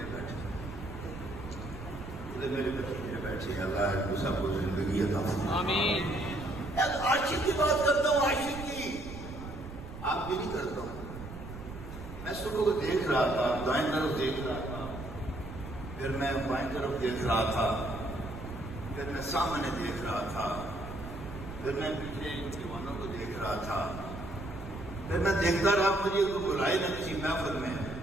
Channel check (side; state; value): right; noise; rumble, 11 dB below the sound